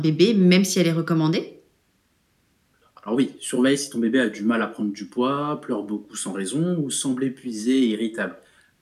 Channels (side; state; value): both; identical; correlation 1.00